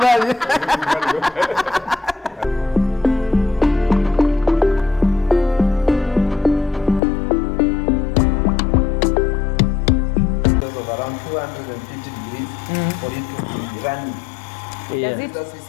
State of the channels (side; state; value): right; drops out; at 7.0 s